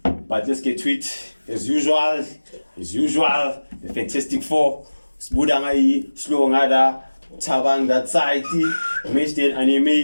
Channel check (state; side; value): inverted; both; correlation -1.00